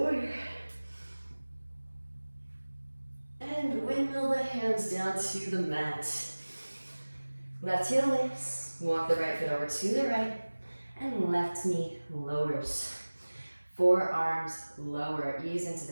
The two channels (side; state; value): both; inverted; correlation -1.00